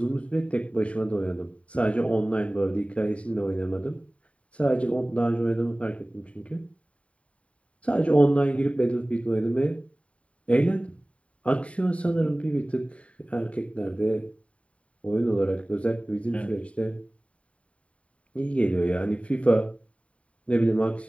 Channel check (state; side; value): late; right; 0.064 ms